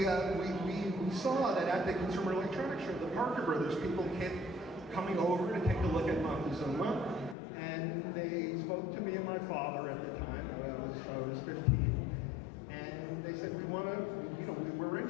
saw that at the Consumer Electronics Show, the Parker Brothers people kept coming over to take a look at Montezuma, and they spoke to me and my father at the time. I was 15, and they said, we're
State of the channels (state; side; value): drops out; right; at 7.4 s